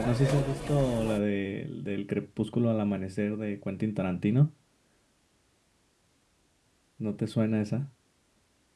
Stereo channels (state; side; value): identical; both; correlation 1.00